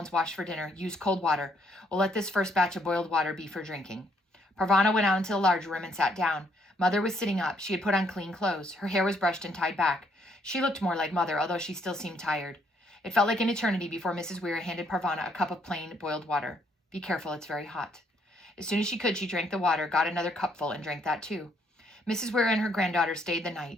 washed for dinner? Use cold water. We'll let this first batch of boiled water be for drinking. Parvana went out into the large room and sat down. Mother was sitting up. She had put on clean clothes. Her hair was brushed and tied back. She looked more like Mother, although she still seemed tired. It felt like an eternity before Mrs. Weir handed Parvana a cup of plain boiled water. Be careful, it's very hot. As soon as she could, she drank the water, got another cupful, and drank that too. Mrs. Weir and her granddaughter stayed the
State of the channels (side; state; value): both; normal; correlation 0.70